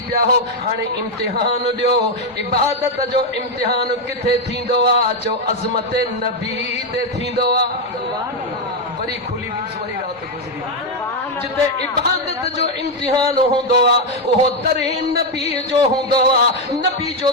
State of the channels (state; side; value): normal; both; correlation 0.04